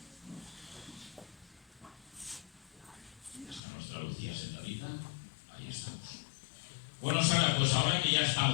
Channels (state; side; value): drops out; right; at 3.6 s